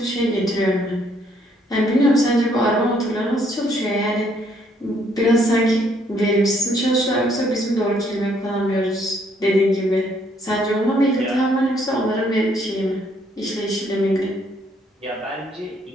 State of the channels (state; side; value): normal; both; correlation 0.68